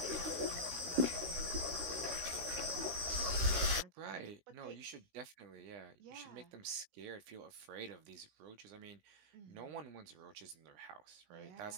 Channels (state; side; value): late; left; 16 ms